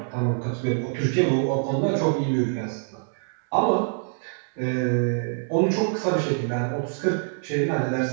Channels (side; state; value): left; silent; 62 dB below the other